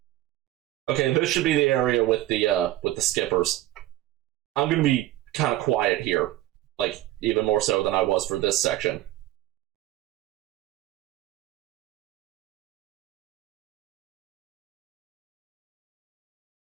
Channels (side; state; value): left; quieter; 15.1 dB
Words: Okay, this should be the area with the skippers. I'm gonna be kind of quiet here, like even more so than I was for this section.